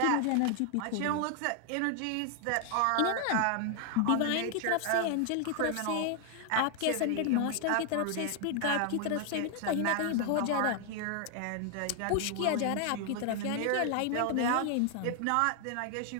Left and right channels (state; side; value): different; both; correlation 0.00